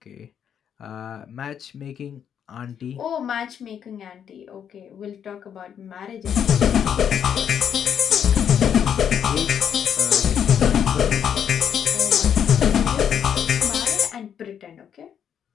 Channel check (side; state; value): right; quieter; 8.5 dB